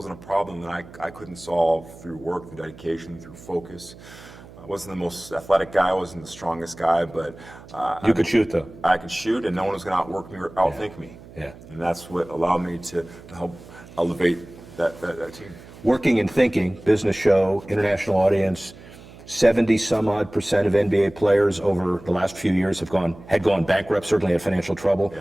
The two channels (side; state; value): right; noise; hum, 19 dB below the sound